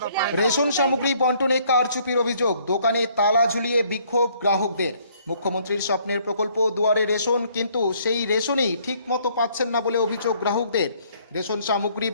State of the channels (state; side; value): inverted; both; correlation -0.63